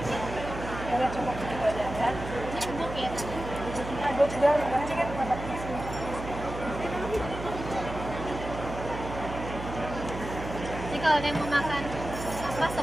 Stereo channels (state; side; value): noise; right; hum, 8 dB below the sound